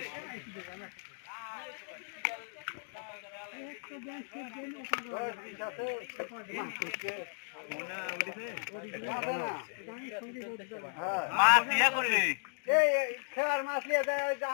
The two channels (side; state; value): right; silent; digital silence